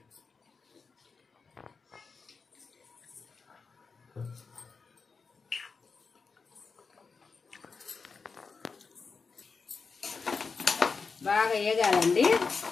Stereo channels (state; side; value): quieter; right; 4.9 dB